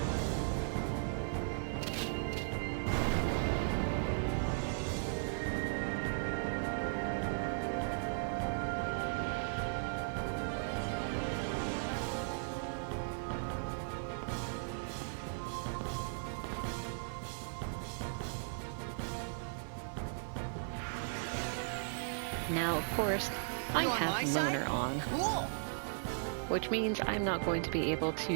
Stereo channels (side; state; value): left; silent; 53 dB below the other